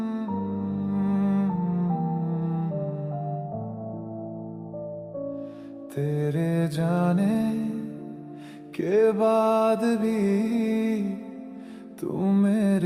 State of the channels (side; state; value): both; identical; correlation 1.00